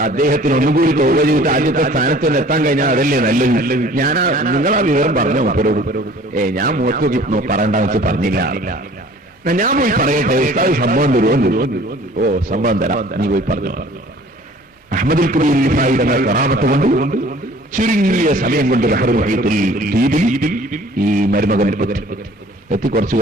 അദ്ദേഹത്തിന് ഒന്നുകൂടി തൗബ ചെയ്തിട്ട് ആദ്യത്തെ സ്ഥാനത്ത് തന്നെ എത്താൻ കഴിഞ്ഞാൽ അതല്ലേ നല്ലത്. നിങ്ങളാ വിവരം പറഞ്ഞോ മൂപ്പരോട്? ഞാൻ മുഖത്ത് പറയണ്ടെന്ന് വെച്ച് പറഞ്ഞില്ല. ഞാൻ പോയി പറയട്ടെ, ഉസ്താദ് സംഭവം തരുമോ? ഓ സംഭവം തരാം, നീ പോയി പറഞ്ഞു. അഹ്മദുൽ കബീർ റിഫായി തങ്ങൾ കറാമത്ത് കൊണ്ട് ചുരുങ്ങിയ സമയം കൊണ്ട് ബഹറുൽ മുഹീത്തുൽ ദ്വീപിൽ ഈ മരുമകൻ എത്തി. കുറച്ച്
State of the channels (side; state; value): both; normal; correlation 0.50